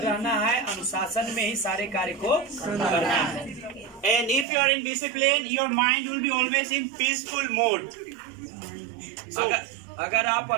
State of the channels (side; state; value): left; drops out; at 4.5 s